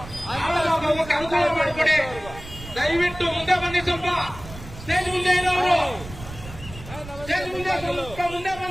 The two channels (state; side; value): noise; right; rumble, 14 dB below the sound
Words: ಹೋಗಕ್ಕೆ ಅನುಕೂಲ ಮಾಡಿಕೊಡಿ. ದಯವಿಟ್ಟು ಮುಂದೆ ಬನ್ನಿ. ಸ್ವಲ್ಪ ಸ್ಟೇಜ್ ಮುಂದೆ ಇರೋರು ಸ್ಟೇಜ್ ಮುಂದೆ ಸ್ವಲ್ಪ ಮುಂದೆ